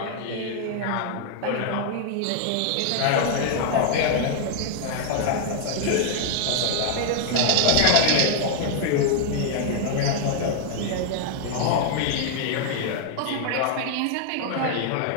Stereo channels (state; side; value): different; both; correlation 0.00